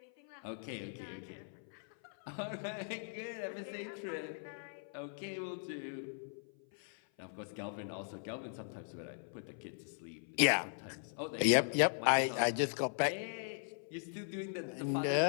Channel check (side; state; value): right; silent; 52 dB below the other